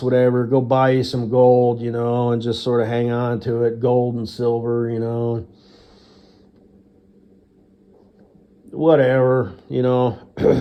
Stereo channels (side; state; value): both; identical; correlation 1.00